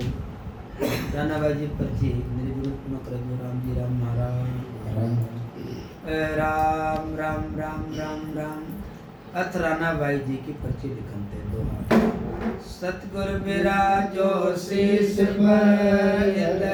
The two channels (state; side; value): identical; both; correlation 1.00